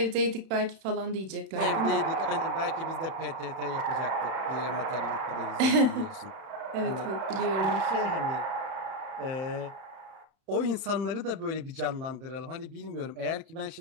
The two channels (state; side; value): late; left; 31 ms